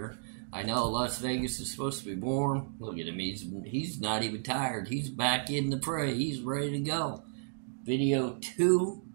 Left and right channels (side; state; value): left; silent; digital silence